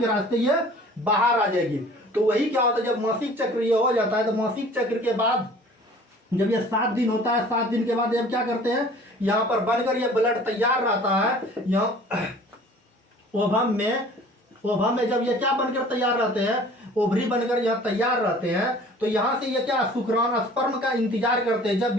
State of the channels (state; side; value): normal; both; correlation 0.48